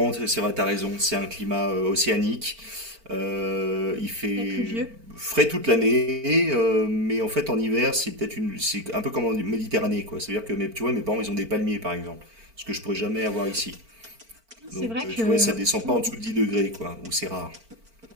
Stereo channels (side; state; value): left; late; 4.4 ms